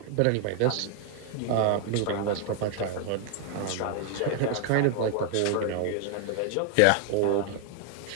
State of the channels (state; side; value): different; both; correlation 0.00